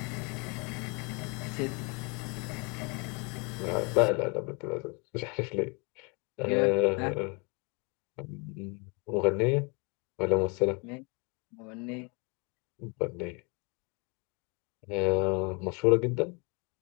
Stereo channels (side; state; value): right; quieter; 31.7 dB